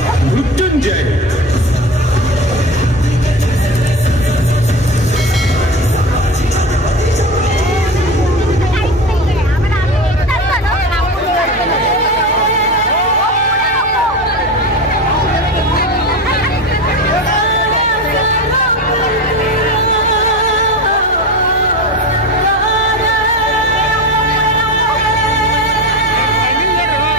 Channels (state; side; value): normal; both; correlation 0.26